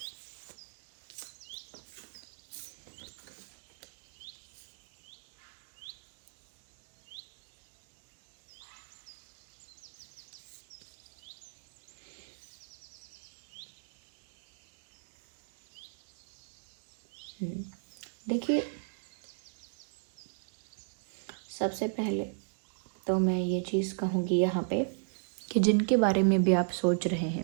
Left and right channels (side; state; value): left; silent; digital silence